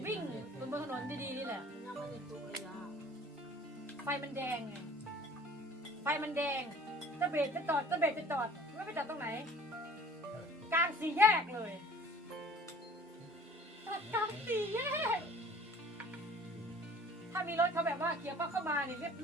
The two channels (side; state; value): both; normal; correlation 0.49